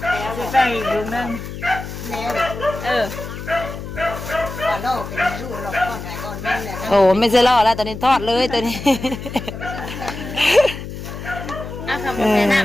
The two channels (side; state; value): left; noise; hum, 9 dB below the sound